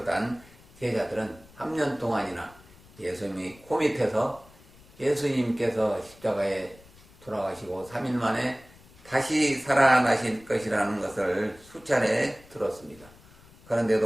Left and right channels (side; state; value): left; noise; rumble, 24 dB below the sound